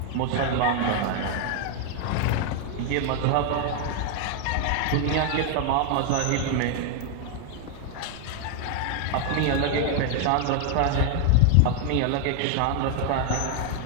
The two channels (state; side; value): different; both; correlation 0.01